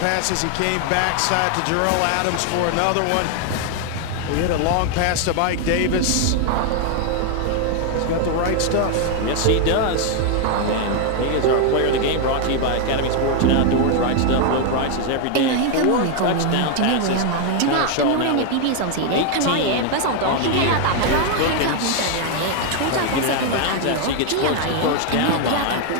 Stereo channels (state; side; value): different; both; correlation 0.01